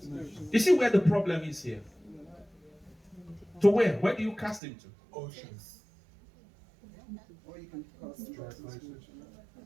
You see where the problem is here? To where? Where do you cast him to? Oceans. Or you can cast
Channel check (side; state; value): left; drops out; at 4.6 s